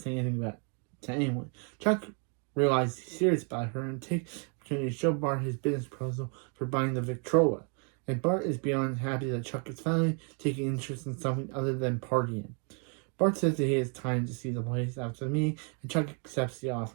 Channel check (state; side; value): quieter; left; 39.7 dB